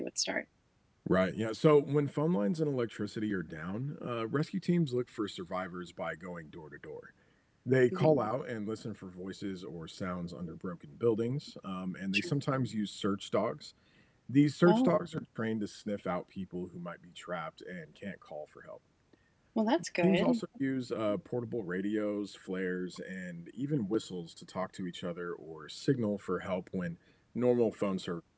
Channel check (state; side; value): identical; both; correlation 1.00